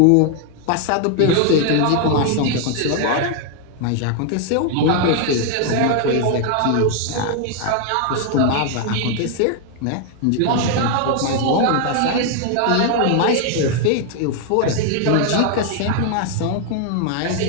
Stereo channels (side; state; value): both; different; correlation 0.00